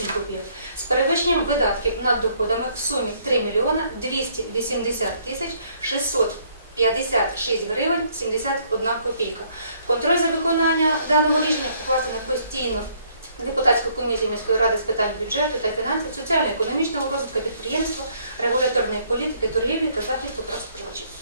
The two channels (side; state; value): both; inverted; correlation -0.66